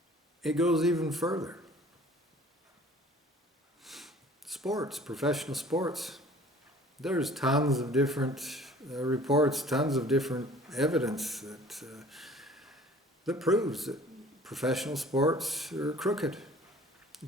It goes even further. Sports, professional sports. There's tons of different reports, tons of different evidence that proves that professional sports are crooked.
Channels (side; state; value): both; normal; correlation 0.50